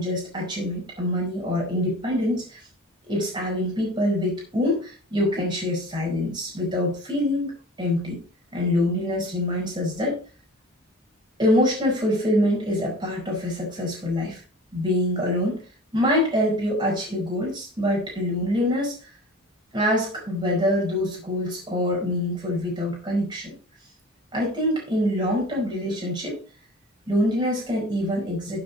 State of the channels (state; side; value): normal; both; correlation 0.40